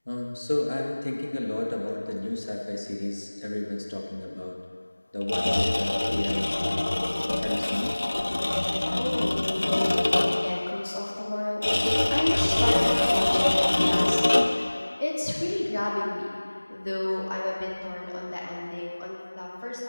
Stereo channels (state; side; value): inverted; both; correlation -1.00